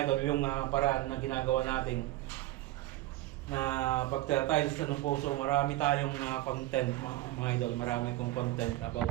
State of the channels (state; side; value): quieter; left; 16.5 dB